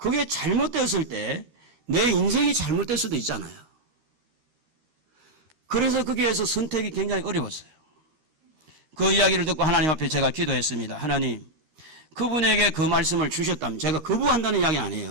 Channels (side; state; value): left; late; 13 ms